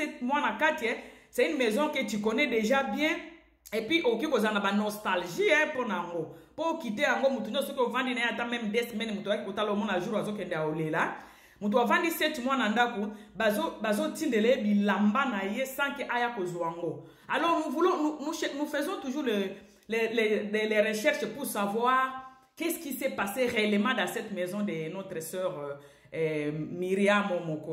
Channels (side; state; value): both; identical; correlation 1.00